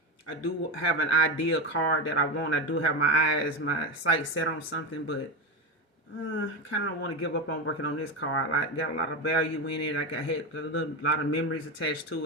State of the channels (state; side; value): normal; both; correlation 0.17